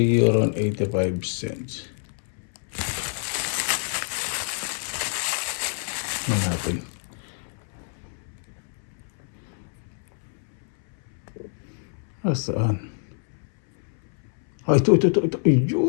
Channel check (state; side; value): silent; right; 61 dB below the other